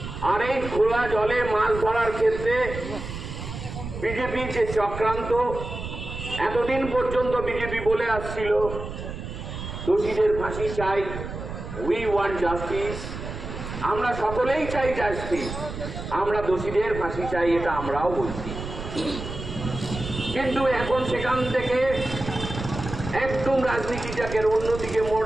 আর এই খোলা জলে মাছ ধরার ক্ষেত্রে বিজেপি যে চক্রান্ত, এতদিন পর্যন্ত বিজেপি বলে আসছিল দোষীদের ফাঁসি চাই, উই ওয়ান্ট জাস্টিস, আমরা সকলেই চাই জাস্টিস, আমরা দোষীদের ফাঁসি চাই, এটা আমরাও বলছি। কিন্তু এখন সেখান থেকে একদম রাজনীতিটাকে অন্যদিকে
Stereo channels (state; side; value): noise; right; rumble, 8 dB below the sound